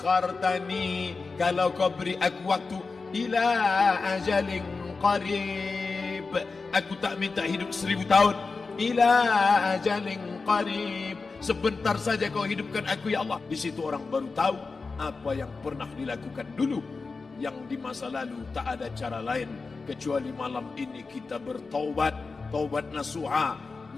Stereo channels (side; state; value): right; quieter; 4.2 dB